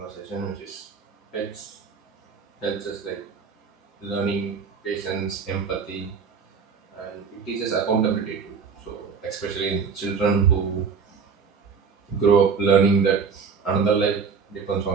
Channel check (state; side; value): quieter; left; 5.8 dB